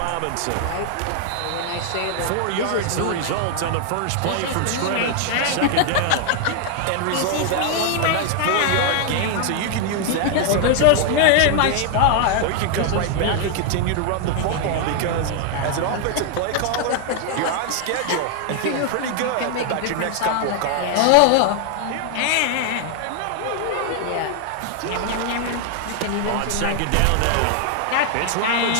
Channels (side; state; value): both; different; correlation 0.00